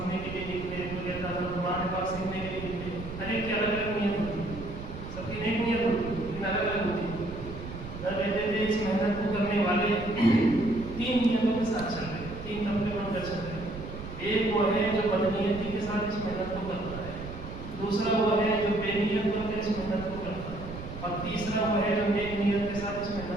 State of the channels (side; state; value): right; noise; rumble, 10 dB below the sound